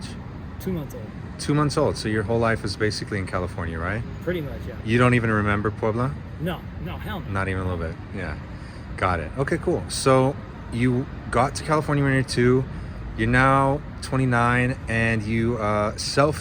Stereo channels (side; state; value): both; identical; correlation 1.00